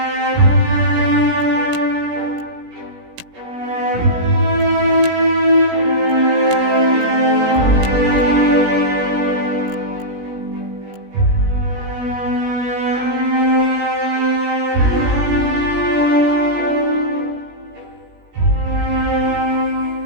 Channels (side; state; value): left; late; 17 ms